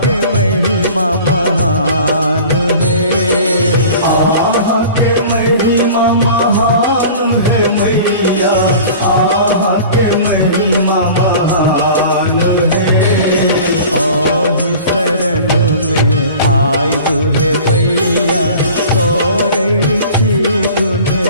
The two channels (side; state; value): both; inverted; correlation -0.42